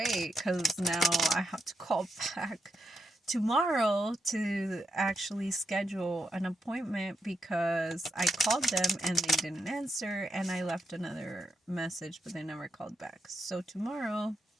because now I have to call back tomorrow to actually schedule an appointment because I called them and they didn't answer, and I left another message but they never called back. So tomorrow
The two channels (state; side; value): normal; both; correlation 0.82